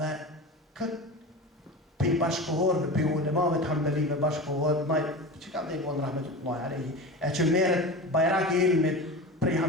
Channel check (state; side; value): normal; both; correlation 0.29